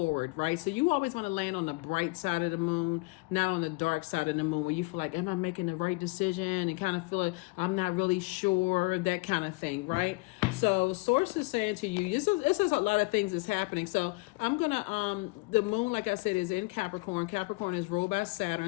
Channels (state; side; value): quieter; right; 26.5 dB